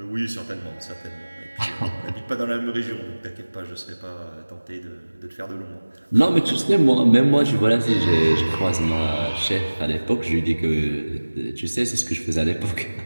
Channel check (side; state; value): both; inverted; correlation -1.00